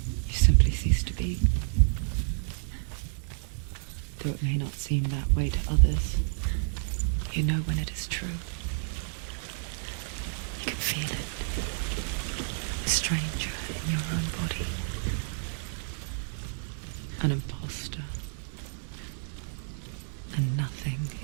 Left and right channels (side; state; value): left; silent; digital silence